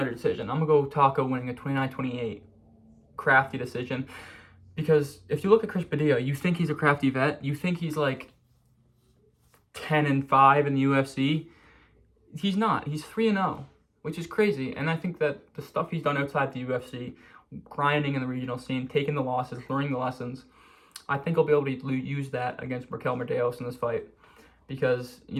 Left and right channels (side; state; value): both; identical; correlation 1.00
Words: decision. I'm going to go Taco winning a 29-28 crafty decision, because if you look at Chris Padilla, you think he's a crafty vet. You think he's like 10-5 in the UFC. He's not. He's 3-0, which is crazy. And I think that the stuff he's done outside the UFC, grinding in the regional scene, taking the losses, learning the lessons, I think he'll be able to use that against Markel Medeiros in this fight, because